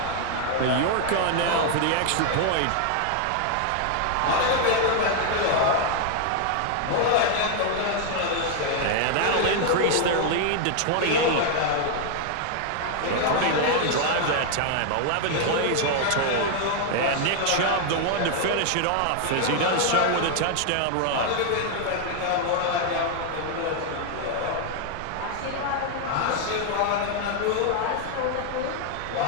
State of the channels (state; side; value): different; both; correlation 0.00